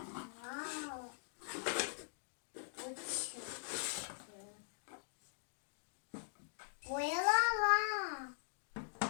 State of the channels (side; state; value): right; silent; digital silence